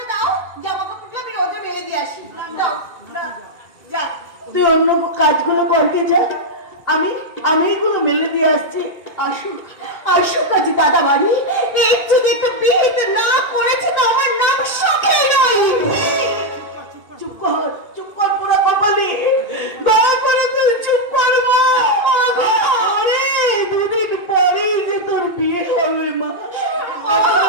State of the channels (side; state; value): right; late; 2.5 ms